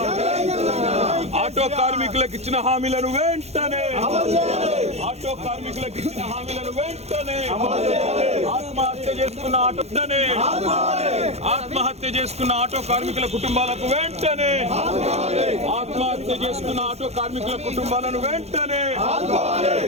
ఆటో కార్మికులకు ఇచ్చిన హామీలను వెంటనే ఆటో కార్మికులకు ఇచ్చిన హామీలను వెంటనే ఆత్మహత్య చేసుకున్న ఆత్మహత్య చేసుకున్న ఆటో కార్మికుల కుటుంబాలకు వెంటనే ఆత్మహత్య చేసుకున్న ఆటో కార్మికుల కుటుంబాలను వెంటనే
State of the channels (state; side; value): late; left; 0.31 ms